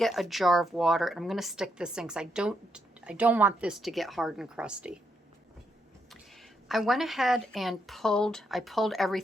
a jar of water and I'm going to stick this in because I don't want this to get hard and crusty. I went ahead and pulled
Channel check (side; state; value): both; normal; correlation 0.78